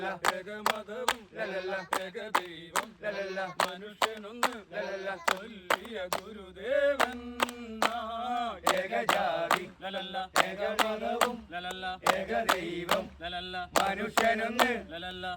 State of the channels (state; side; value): identical; both; correlation 1.00